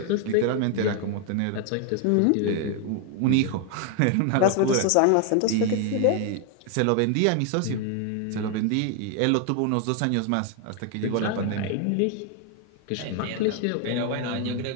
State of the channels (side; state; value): both; different; correlation 0.00